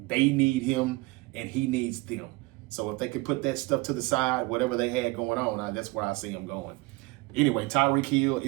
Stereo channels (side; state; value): left; quieter; 23.2 dB